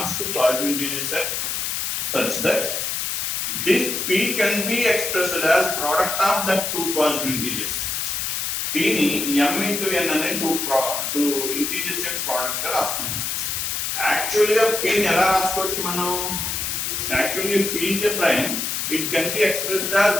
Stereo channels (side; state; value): left; noise; hiss, 1 dB below the sound